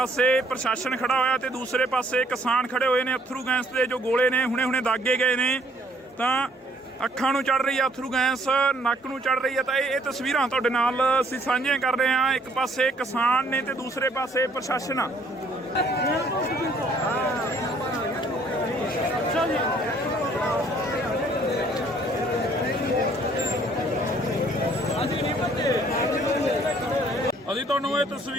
ਪ੍ਰਸ਼ਾਸਨ ਖੜਾ ਹੋਇਆ ਤੇ ਦੂਸਰੇ ਪਾਸੇ ਕਿਸਾਨ ਖੜੇ ਹੋਏ ਨੇ। ਅਥਰੂ ਗੈਸ ਦੇ ਜੋ ਗੋਲੇ ਨੇ ਹੁਣੇ ਦਾਗੇ ਗਏ ਨੇ ਤਾਂ ਅੱਖਾਂ ਨੂੰ ਚੜ ਰਹੀ ਆ ਅਥਰੂ ਗੈਸ, ਨੱਕ ਨੂੰ ਚੜ ਰਹੀ ਆ। ਤਾਂ ਇਹ ਤਸਵੀਰਾਂ ਤੁਹਾਡੇ ਨਾਲ ਅਸੀਂ ਸਾਂਝੀਆਂ ਕਰ ਰਹੇ ਹਾਂ। ਇੱਕ ਪਾਸੇ ਕਿਸਾਨ ਨੇ ਤੇ ਦੂਸਰੇ ਪਾਸੇ ਪ੍ਰਸ਼ਾਸਨ ਆ। ਅਸੀਂ ਤੁਹਾਨੂੰ ਇਹ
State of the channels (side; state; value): both; normal; correlation 0.62